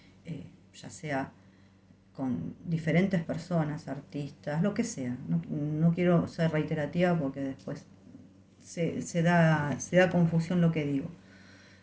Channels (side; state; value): both; identical; correlation 1.00